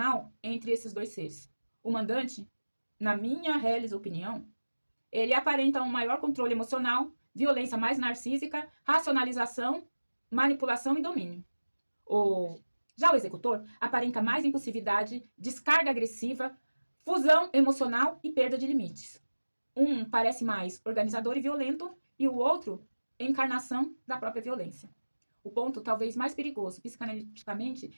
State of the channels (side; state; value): both; inverted; correlation -1.00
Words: entre esses dois seres. O mandante, na minha reles opinião, ele aparenta um maior controle emocional, violência mais narcísica, racionalização, manipulação e domínio. Já o executor aparenta mais impulsividade, descarga agressiva, fusão emocional e perda de limites. Um parece mais organizador e violento e o outro encarnação da própria violência. O ponto talvez mais perigoso